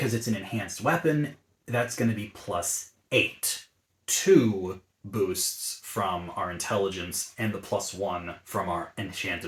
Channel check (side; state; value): both; identical; correlation 1.00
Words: it's an enhanced weapon, that's going to be +8. 2 boosts from our intelligence and the +1 from our